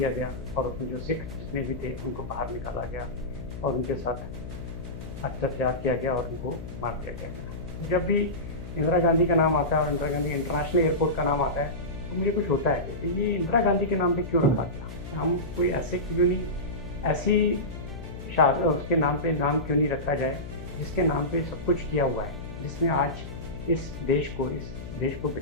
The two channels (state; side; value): noise; left; hum, 10 dB below the sound